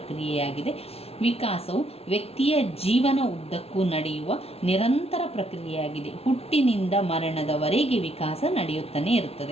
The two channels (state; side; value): late; right; 0.30 ms